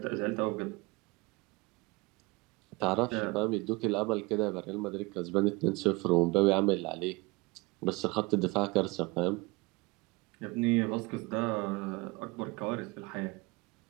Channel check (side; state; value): left; quieter; 24.9 dB